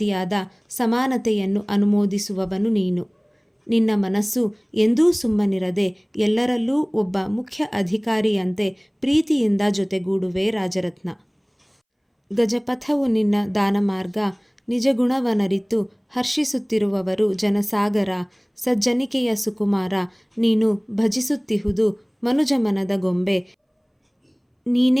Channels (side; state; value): both; identical; correlation 1.00